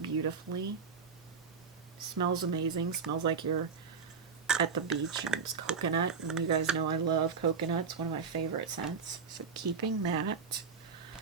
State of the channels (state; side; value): quieter; left; 5.7 dB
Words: Smells amazing. Smells like you're at the beach, and it's coconut, and you guys know I love coconut. It's one of my favorite scents, so keeping that.